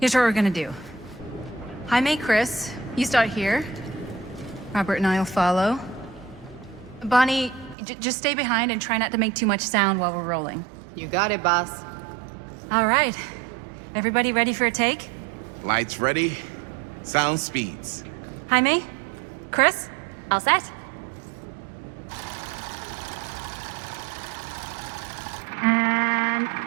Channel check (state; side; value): drops out; left; at 7.8 s